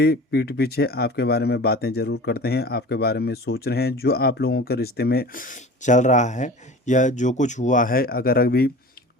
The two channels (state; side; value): normal; both; correlation 0.39